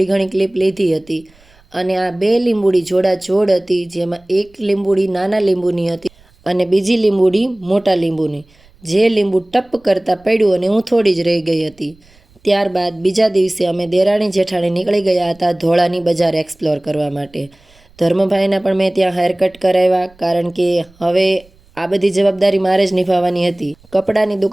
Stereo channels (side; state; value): right; noise; rumble, 30 dB below the sound